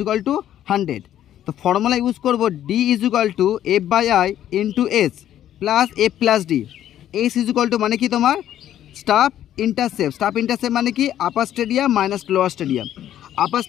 to 100। তো ফর্মুলা ইউজ করবো D equal to F by I into S plus F plus D. S equal to মানে কি তোমার স্টাফ ইন্টারসেপ্ট মানে কি upper stadium minus lower stadium. Upper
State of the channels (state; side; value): quieter; right; 11.5 dB